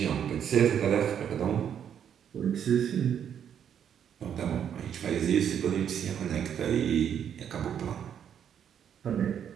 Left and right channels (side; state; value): left; quieter; 8.8 dB